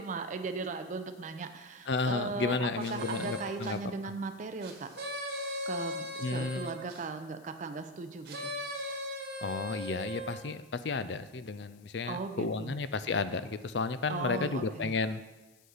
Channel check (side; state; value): left; noise; hiss, 29 dB below the sound